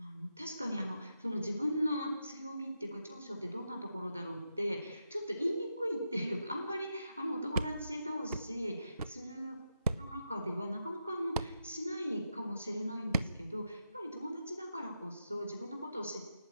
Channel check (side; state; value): both; inverted; correlation -0.85